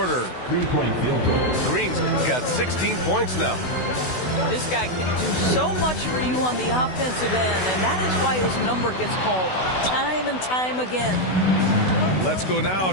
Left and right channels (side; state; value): right; late; 16 ms